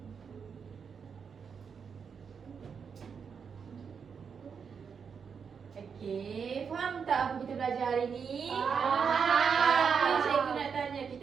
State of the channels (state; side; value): quieter; left; 6.4 dB